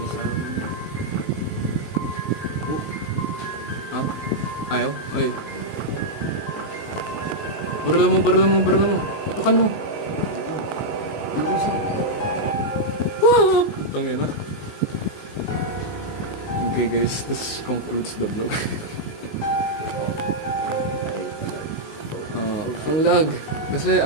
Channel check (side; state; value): right; late; 19 ms